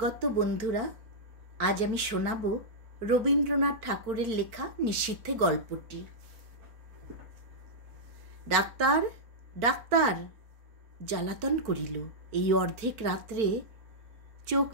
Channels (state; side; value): late; left; 4.5 ms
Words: বন্ধুরা। আজ আমি শোনাব রবীন্দ্রনাথ ঠাকুরের লেখা নিশীথে গল্পটি। ডাক্তার ডাক্তার জ্বালাতন করিল। এই অর্ধেক রাত্রে চোখ